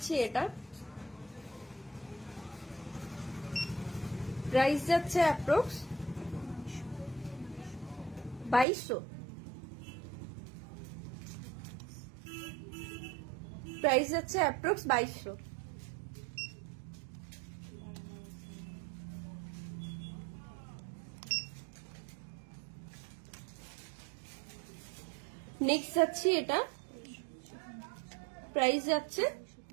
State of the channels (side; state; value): left; drops out; at 8.7 s